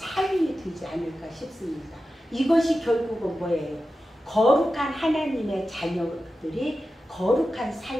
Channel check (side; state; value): both; normal; correlation 0.92